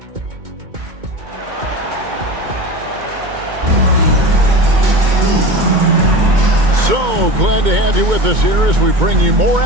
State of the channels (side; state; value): left; late; 2.2 ms